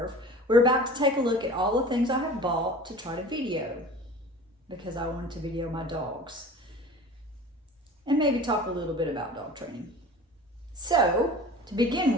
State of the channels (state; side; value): normal; both; correlation 0.40